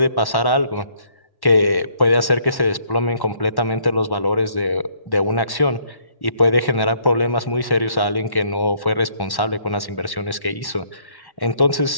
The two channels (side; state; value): right; late; 1.1 ms